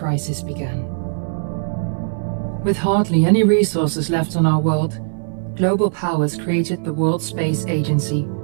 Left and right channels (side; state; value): left; silent; 61 dB below the other